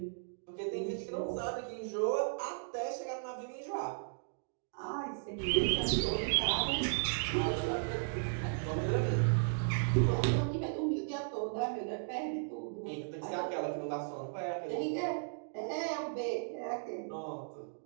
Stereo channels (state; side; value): silent; left; digital silence